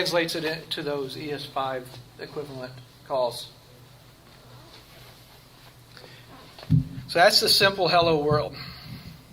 it into those ES5 equivalent calls. So that's the simple hello world.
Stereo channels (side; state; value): both; identical; correlation 1.00